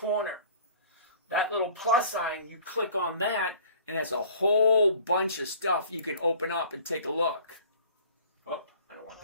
That little plus sign, you click on that, and there's a whole bunch of stuff you can open up and take a look. Oh, I don't want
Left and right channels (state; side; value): inverted; both; correlation -0.49